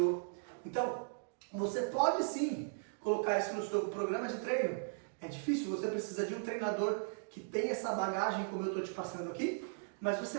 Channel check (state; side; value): silent; left; digital silence